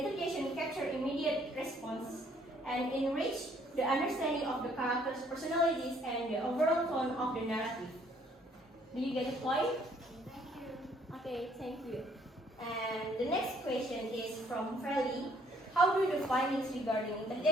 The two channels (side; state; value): both; normal; correlation 0.63